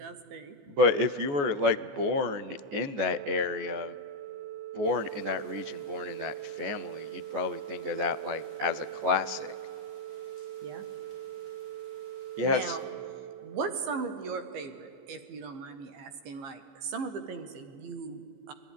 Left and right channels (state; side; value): late; left; 14 ms